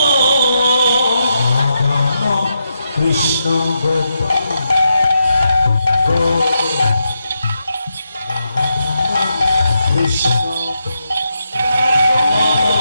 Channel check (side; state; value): both; inverted; correlation -0.84